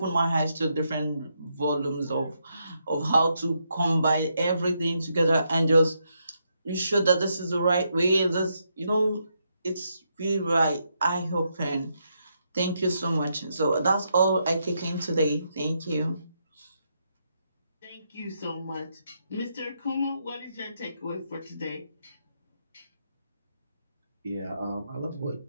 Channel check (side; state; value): both; inverted; correlation -0.80